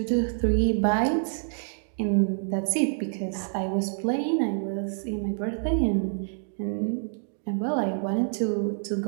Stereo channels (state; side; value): silent; left; digital silence